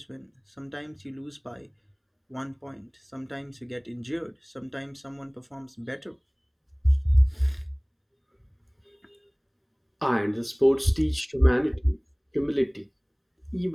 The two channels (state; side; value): identical; both; correlation 1.00